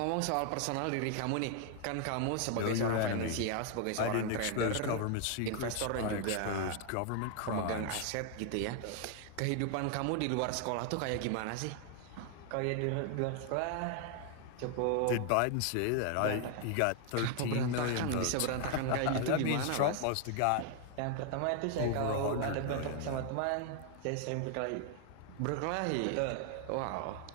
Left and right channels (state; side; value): different; both; correlation 0.00